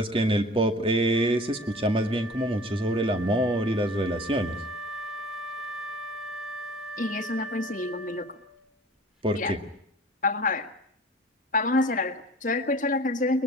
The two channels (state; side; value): normal; both; correlation 0.45